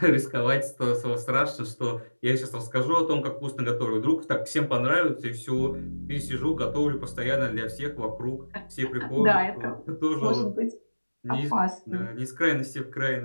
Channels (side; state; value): both; inverted; correlation -1.00